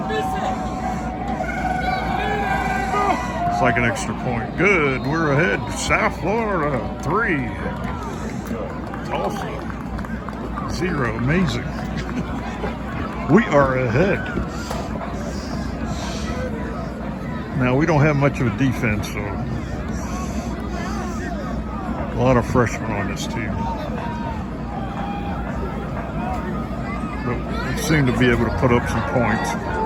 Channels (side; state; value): both; identical; correlation 1.00